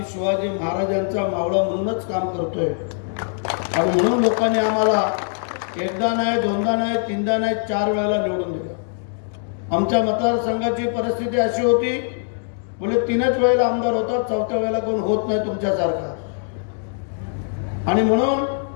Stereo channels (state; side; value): silent; right; digital silence